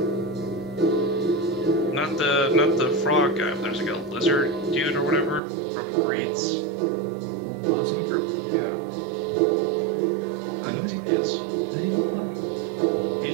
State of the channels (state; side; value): drops out; left; at 5.4 s